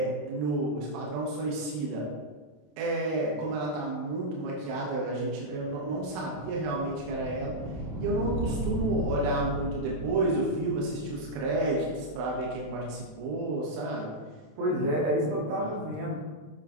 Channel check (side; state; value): left; late; 28 ms